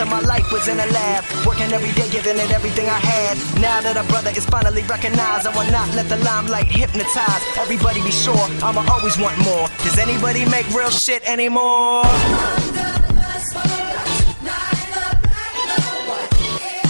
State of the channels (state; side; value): inverted; both; correlation -1.00